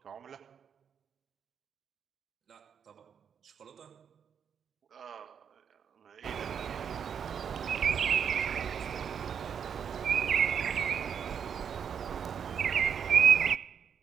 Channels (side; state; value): left; quieter; 7.5 dB